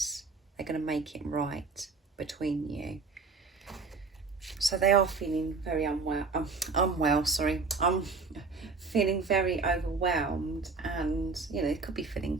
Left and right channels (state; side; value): quieter; left; 4.4 dB